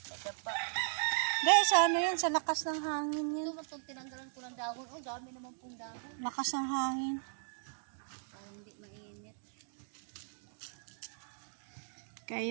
nadapa. Guys, ano yan? Sa lakas ng hangin yan. Ito matong tinanggalan ko ng dahon. Oh, dami naman pong dahon. Lakas ng hangin. Para hindi mainit. Kaya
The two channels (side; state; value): left; silent; digital silence